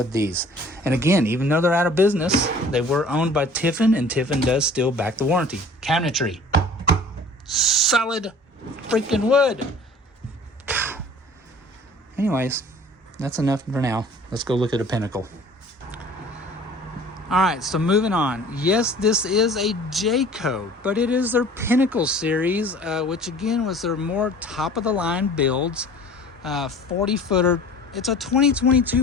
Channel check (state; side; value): normal; both; correlation 0.47